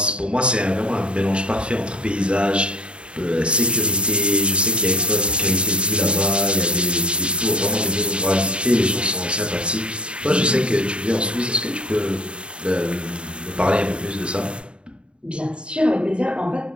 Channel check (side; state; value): left; late; 0.055 ms